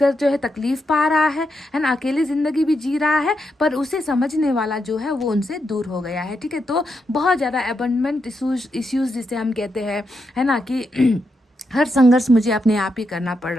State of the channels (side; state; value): both; normal; correlation 0.83